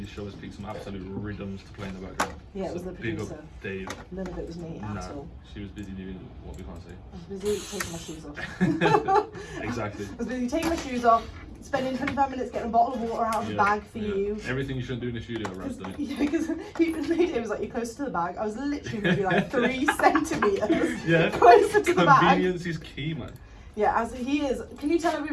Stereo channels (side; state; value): both; identical; correlation 1.00